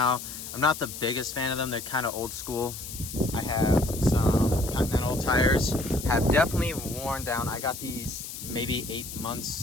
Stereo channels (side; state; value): left; noise; hiss, 10 dB below the sound